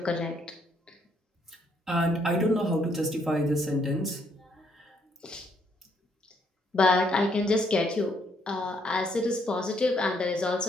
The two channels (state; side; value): normal; both; correlation 0.71